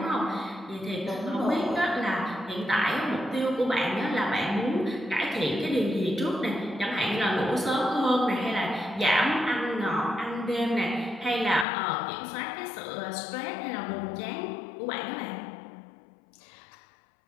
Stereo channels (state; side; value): drops out; right; at 11.7 s